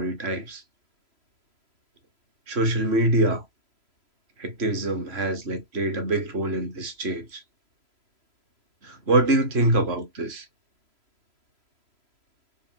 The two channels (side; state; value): left; late; 3.0 ms